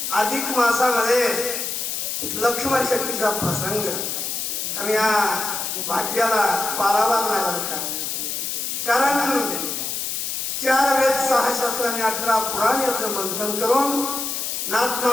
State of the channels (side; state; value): left; noise; hiss, 3 dB below the sound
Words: अधिक मासामध्ये लक्ष्मण शक्तीचा प्रसंग आणि या भाग्याला पारावार नाही का, कारण 4 वेद 6 शास्त्र आणि 18 पुराण याचं मंथन करून नाथ